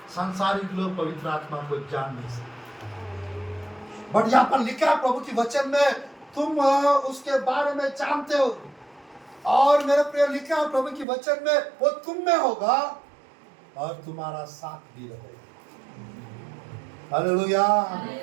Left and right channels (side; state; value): left; drops out; at 11.1 s